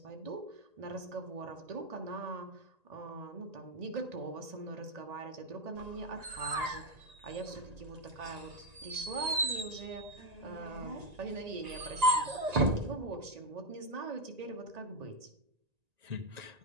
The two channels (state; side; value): late; left; 1.9 ms